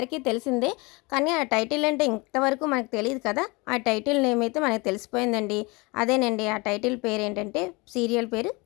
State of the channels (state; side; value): quieter; right; 26.2 dB